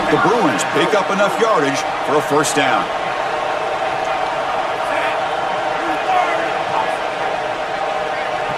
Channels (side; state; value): both; identical; correlation 1.00